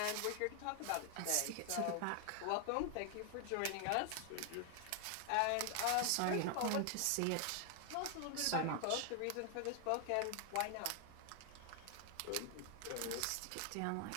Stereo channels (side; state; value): both; different; correlation 0.00